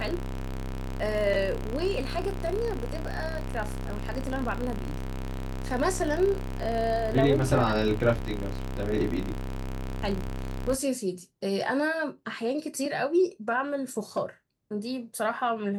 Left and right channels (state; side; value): identical; both; correlation 1.00